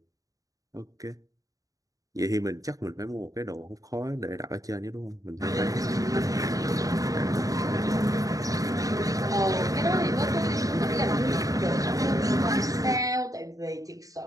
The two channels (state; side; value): late; left; 0.17 ms